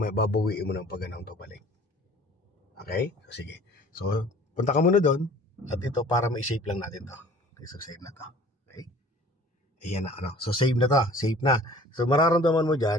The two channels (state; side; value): normal; both; correlation 0.48